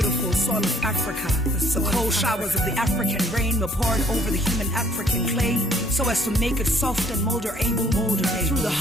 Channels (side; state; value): both; normal; correlation 0.61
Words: soil of Africa, the cold showers of the African rain were poured over the human African clay, so as to make it soft and moldable. Through the